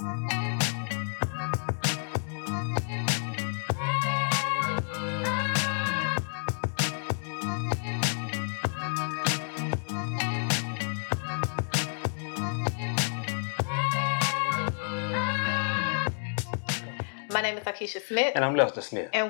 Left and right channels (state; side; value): silent; right; digital silence